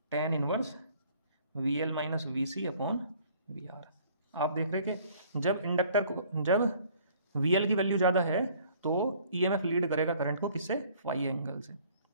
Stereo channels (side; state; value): both; inverted; correlation -0.56